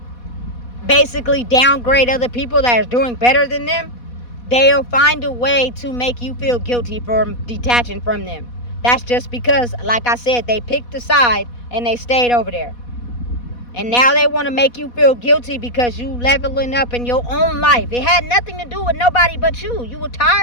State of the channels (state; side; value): late; right; 4.1 ms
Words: basically downgrade other people that are doing better than them, they'll find a way to make you feel guilty for detaching from them. That's just because, like I said, they picked a side and they stayed over there. And now they want to make you feel guilty because you leveling up in your own life. It had nothing to do with nobody but you. You were